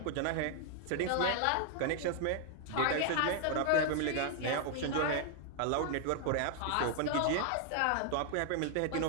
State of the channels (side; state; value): both; different; correlation 0.00